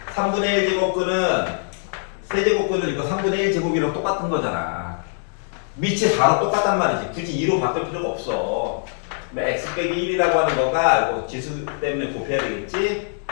3분의 1 제곱근은 세제곱근은 이거 3분의 1 제곱이랑 똑같은 거잖아. 밑이 4로 똑같단 말이지. 굳이 2로 바꿀 필요가 없어. x 빼기 1이라고 하는 거가 이거 지수 때문에 곱해야 되겠지?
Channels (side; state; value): right; silent; 61 dB below the other